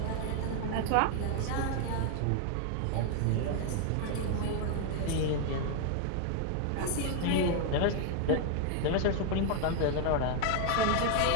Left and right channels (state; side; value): different; both; correlation 0.00